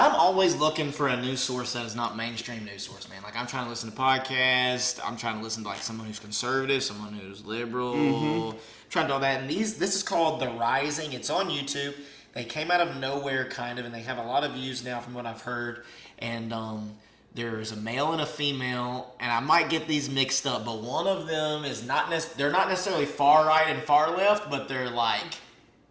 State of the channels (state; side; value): identical; both; correlation 1.00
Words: always looking for a news source that is not mainstream news source, man. Like, I'm trying to listen to podcasts. I'm trying to listen to, like, someone who's conservative, someone who's liberal. Mm-hmm. Trying to do all that. And this is called The Rising. It's on YouTube. They came out of nowhere, kind of, and they have a lot of views now from what I've heard. And there's a male and a female, and I might get these mixed up, but one of them is they're not necessarily far right and far left, but they're like